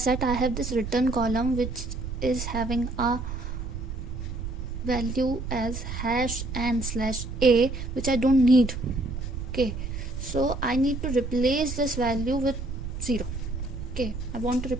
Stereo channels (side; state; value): right; noise; rumble, 6 dB below the sound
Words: I have this return column which is having a value as hash and /a, which I don't need. Okay, so I need to replace this value with 0. Okay, I want to